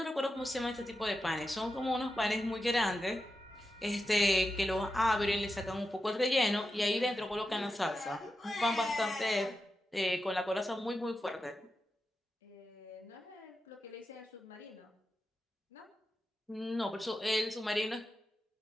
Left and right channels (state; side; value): normal; both; correlation 0.90